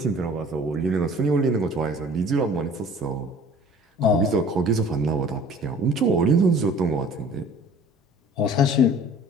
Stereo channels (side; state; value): both; normal; correlation 0.48